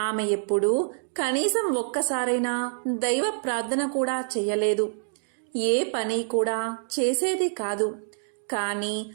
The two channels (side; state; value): left; silent; digital silence